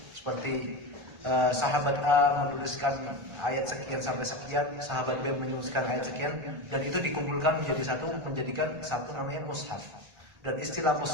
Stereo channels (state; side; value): late; left; 1.4 ms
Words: seperti sahabat A menuliskan ayat sekian sampai sekian, sahabat B menuliskan ayat sekian, dan itu dikumpulkan menjadi satu, menjadikan satu namanya mushaf. Dan istilah